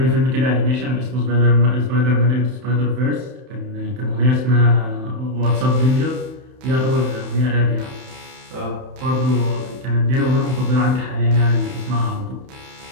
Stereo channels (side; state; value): left; late; 31 ms